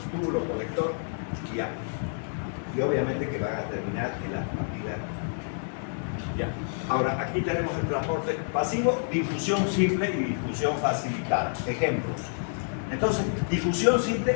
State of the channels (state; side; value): silent; right; digital silence